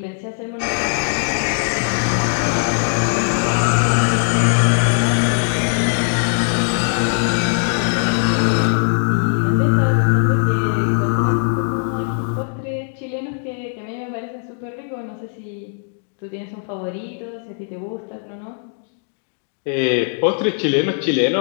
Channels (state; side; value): silent; right; digital silence